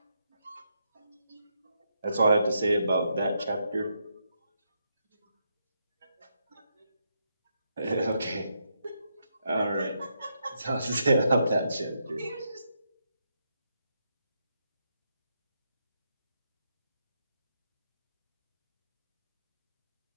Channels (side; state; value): both; inverted; correlation -0.80